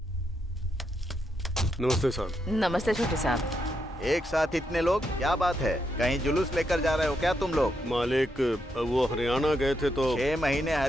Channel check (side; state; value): both; normal; correlation 0.81